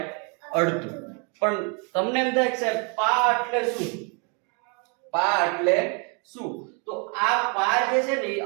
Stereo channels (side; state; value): left; quieter; 35.9 dB